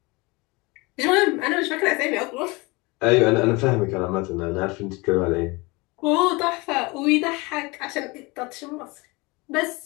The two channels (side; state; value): right; quieter; 25.2 dB